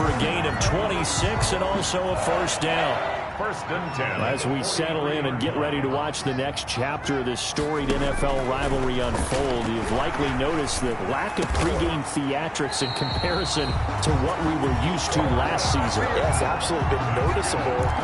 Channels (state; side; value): identical; both; correlation 1.00